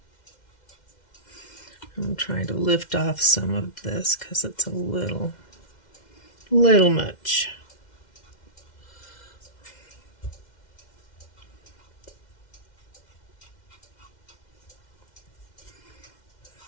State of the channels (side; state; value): right; late; 2.1 ms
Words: I'm trying to lift off some of this because it's a little much.